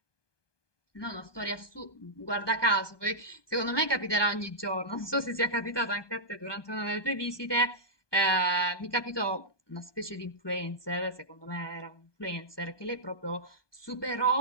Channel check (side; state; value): right; late; 1.2 ms